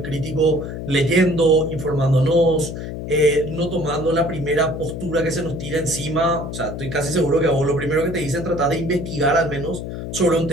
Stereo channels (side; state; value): left; noise; hum, 7 dB below the sound